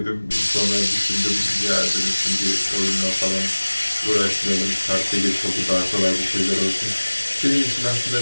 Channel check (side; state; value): both; inverted; correlation -1.00